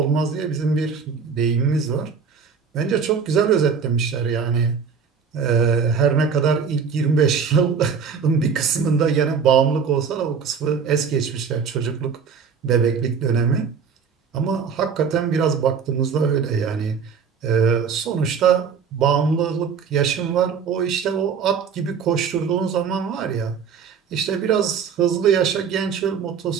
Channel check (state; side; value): quieter; left; 6.2 dB